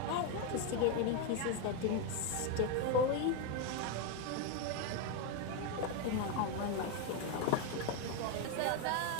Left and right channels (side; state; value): both; different; correlation 0.02